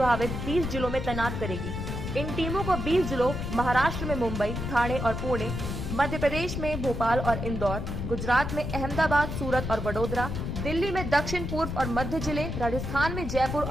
30 जिलों में तैनात करेगी। इन टीमों को 20 जिलों महाराष्ट्र में मुंबई, ठाणे और पुणे, मध्य प्रदेश में भोपाल और इंदौर, गुजरात में अहमदाबाद, सूरत और वडोदरा, दिल्ली में दक्षिण पूर्व और मध्य जिले, राजस्थान में जयपुर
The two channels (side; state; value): left; noise; rumble, 4 dB below the sound